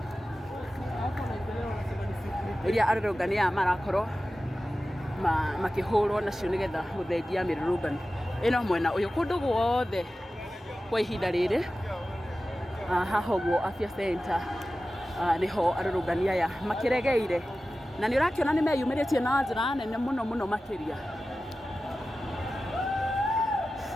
iria arũrũngani aya marakorwo makihũrwo nacio nigetha guthengia mirurungano ino mwena uyu kundu guothe kwa ihinda riri. Haha ũguo Afya Center niho arũrũngani aya makiregeire na ni urakiona ni meyumiritie na njira nene muno makiria.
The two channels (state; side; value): normal; both; correlation 0.95